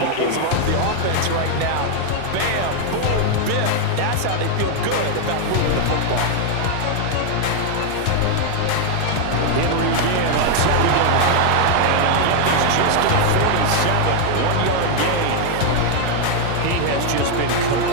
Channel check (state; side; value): different; both; correlation 0.00